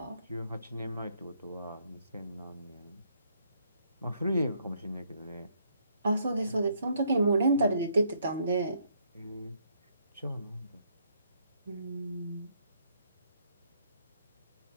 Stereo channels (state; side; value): inverted; both; correlation -0.70